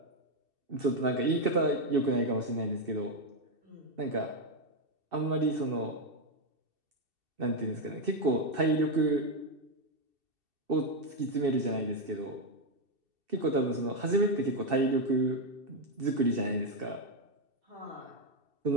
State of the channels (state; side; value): late; left; 2.7 ms